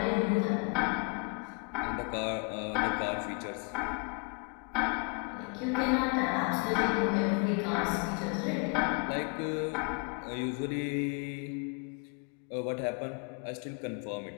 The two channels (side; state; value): right; quieter; 35.0 dB